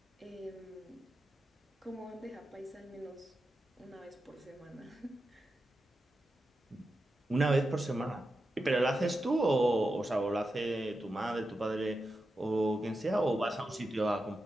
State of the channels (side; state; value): both; normal; correlation 0.90